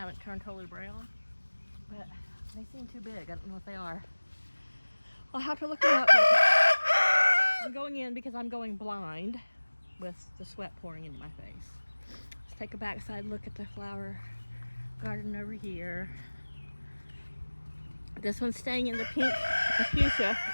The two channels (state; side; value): inverted; both; correlation -1.00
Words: turned totally brown. But they seem too big. I don't know what they are. I'll have to look them up. But I'm going in because I'm going blind with the sweat pouring into my face. Let's take a backside look at the flower garden over here. This one's staying in the pink fuchsia